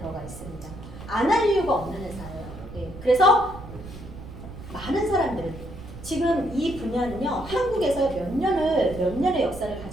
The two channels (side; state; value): right; noise; rumble, 13 dB below the sound